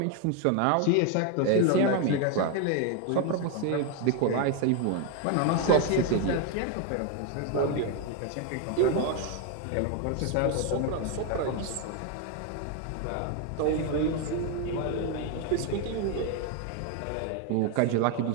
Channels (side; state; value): both; different; correlation 0.01